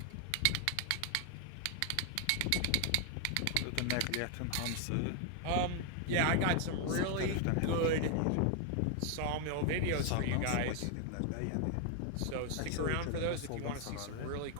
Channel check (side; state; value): both; different; correlation 0.00